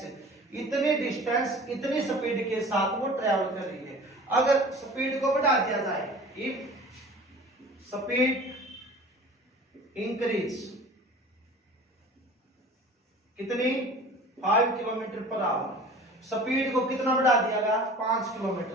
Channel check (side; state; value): both; normal; correlation 0.42